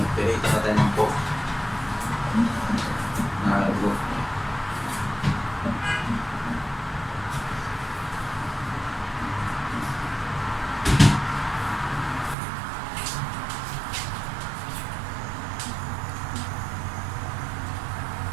pinita natin ng pork na kalugro.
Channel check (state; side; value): drops out; left; at 12.4 s